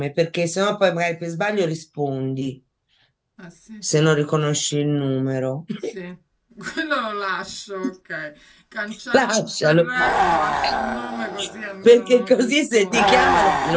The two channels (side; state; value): both; identical; correlation 1.00